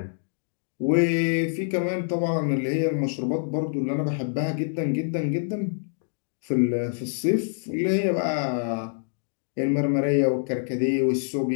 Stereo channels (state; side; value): silent; right; digital silence